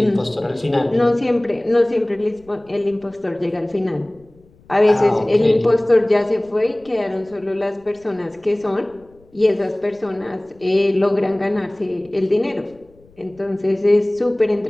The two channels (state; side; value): noise; left; rumble, 29 dB below the sound